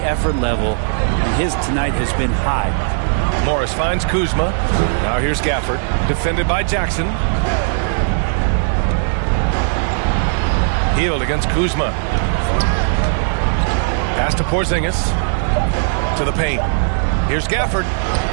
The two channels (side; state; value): left; silent; digital silence